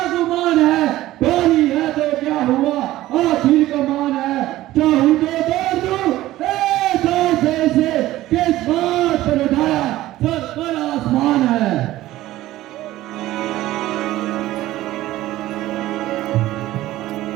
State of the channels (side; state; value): left; quieter; 15.6 dB